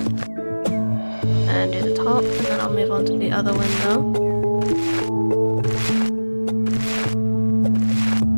And do the top, and then I'll move on to the other window.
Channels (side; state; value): both; inverted; correlation -1.00